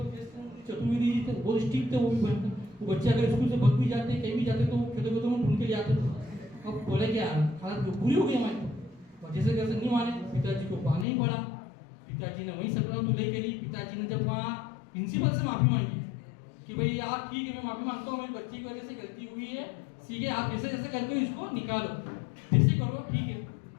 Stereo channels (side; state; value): right; drops out; at 11.1 s